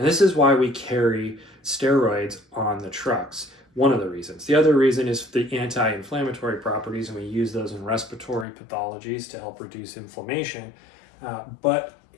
this is why we carry steroids on the trucks. One of the reasons. The other reason is the anti-inflammatory properties, and we use those in respiratory pathologies to help reduce inflammation. But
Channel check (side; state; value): right; drops out; at 8.5 s